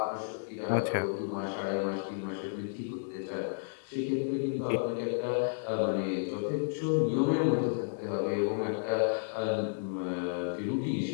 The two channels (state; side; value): silent; right; digital silence